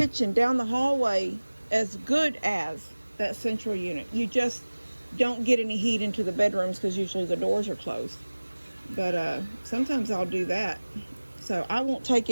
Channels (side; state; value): both; inverted; correlation -1.00